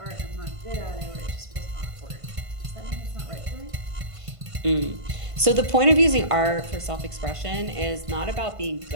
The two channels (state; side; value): late; left; 1.5 ms